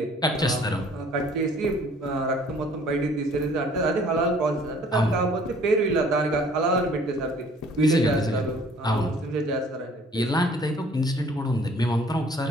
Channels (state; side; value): normal; both; correlation 0.55